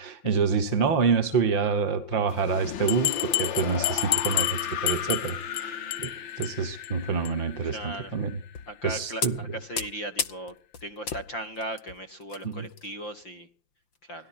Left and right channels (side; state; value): right; late; 5.8 ms